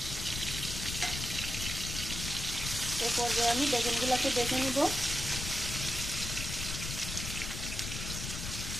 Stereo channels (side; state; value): left; noise; rumble, 5 dB below the sound